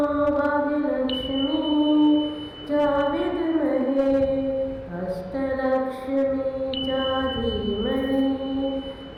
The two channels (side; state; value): both; identical; correlation 1.00